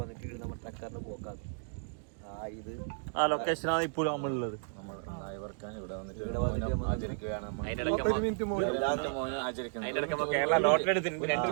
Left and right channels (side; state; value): left; silent; digital silence